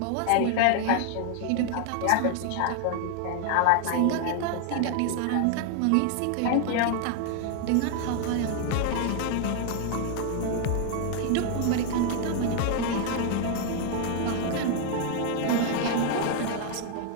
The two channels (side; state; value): both; different; correlation 0.00